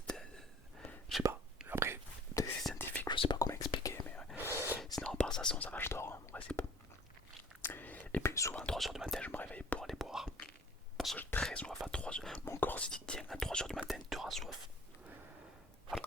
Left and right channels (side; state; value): both; normal; correlation 0.50